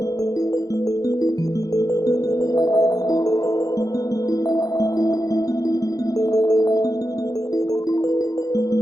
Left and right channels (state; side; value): late; right; 0.17 ms